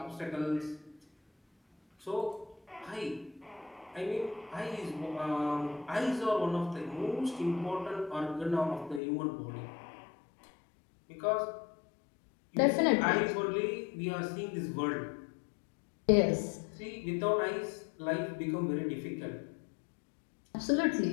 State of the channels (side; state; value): right; drops out; at 9.0 s